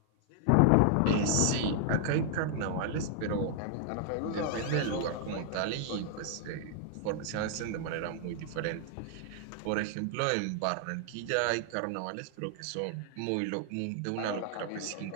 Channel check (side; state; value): both; different; correlation 0.00